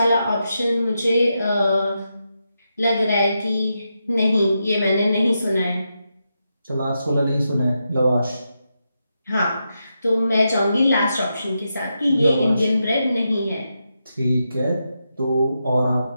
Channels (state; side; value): inverted; both; correlation -0.86